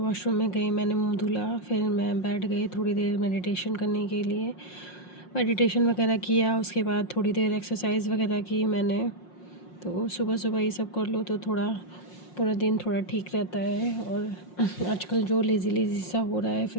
में गई, मैंने मुंह धुला, फिर मैं बैठ गई थोड़ी देर मेडिटेशन करने के लिए। मेडिटेशन वगैरह किया, उसके बाद थोड़ी देर एक्सरसाइज वगैरह की मैंने। तो सुबह सुबह ये सब कर लो तो थोड़ा पूरा दिन थोड़ा ठीक रहता है। और आजकल जो लेज़ी लेज़ी सा हो रहा है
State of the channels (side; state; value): right; late; 5.6 ms